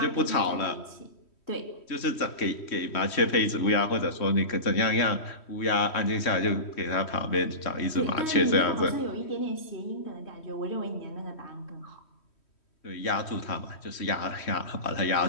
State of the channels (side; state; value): right; late; 3.1 ms